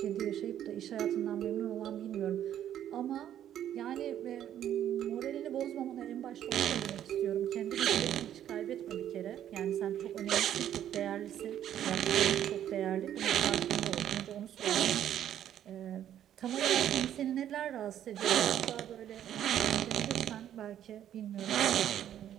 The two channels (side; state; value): left; quieter; 10.8 dB